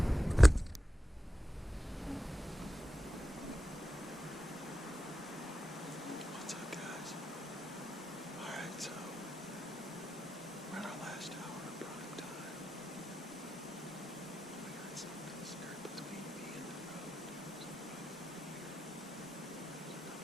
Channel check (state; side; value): normal; both; correlation 0.90